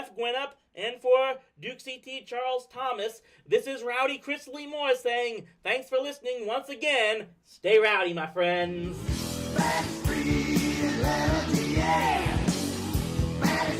Gwinnett and for Duke CT Charles Thomas, this is Rowdy Chris Lee Moore saying, thanks for listening once again. Stay rowdy, my friends. Backstreet Atlanta, yeah.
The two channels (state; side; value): identical; both; correlation 1.00